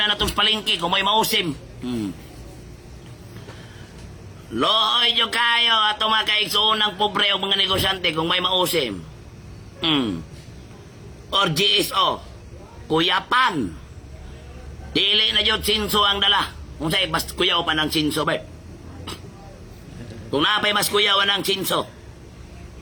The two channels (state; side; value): identical; both; correlation 1.00